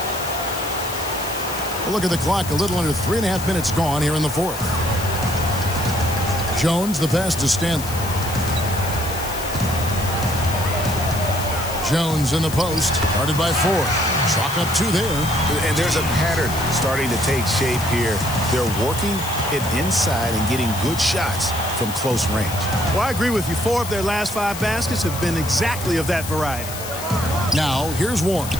Look at the clock. A little under 3.5 minutes gone here in the fourth. Jones, the pass to Stanley. Jones in the post, guarded by Ford. Chalk up 2 there. And there's a pattern starting to take shape here. They're working it inside and getting good shots from close range. Well, I agree with you. 4 of their last 5 baskets have been exactly of that variety. Now, here's Warren.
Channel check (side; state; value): left; noise; hiss, 10 dB below the sound